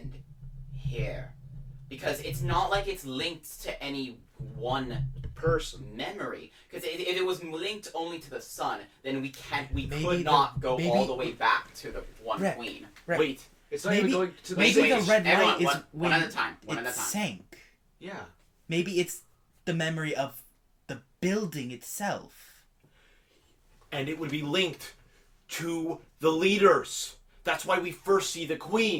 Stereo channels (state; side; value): identical; both; correlation 1.00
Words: here? Because it's not like it's linked to any one person memory. Because if it was linked only to the sun, then we Maybe could not go all the way back to the one Rick, queen. Rick. Wait. It's not even going to the Maybe Wait, the red everyone, light is one when at a time. One it at a time. sank. Yeah. Maybe it's the memory of the building itself. And it would be linked to the leaders. That's why we first see the